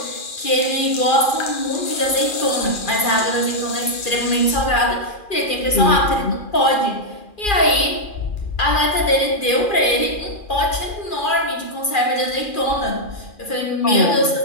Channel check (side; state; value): right; late; 2.4 ms